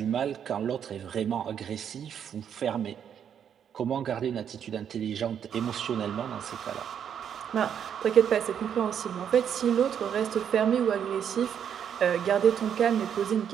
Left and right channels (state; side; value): quieter; left; 8.5 dB